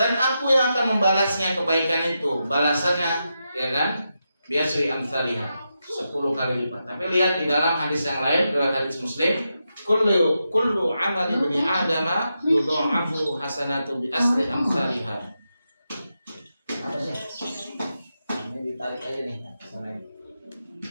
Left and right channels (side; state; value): both; inverted; correlation -0.87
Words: aku yang akan membalasnya kebaikan itu, balasannya, ya kan? Biasri amsalihah, 10 kali lipat. Tapi lihat di dalam hadis yang lain, dalam hadis Muslim, kullu amali bani adama yudha'afu hasanatu bi asri amsalihah. Apa sih? Ini ditarik aja nih,